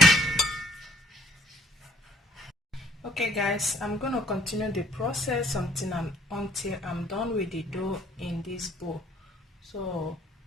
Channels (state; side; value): normal; both; correlation 0.62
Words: Okay guys, I'm going to continue the process until I'm done with the dough in this bowl. So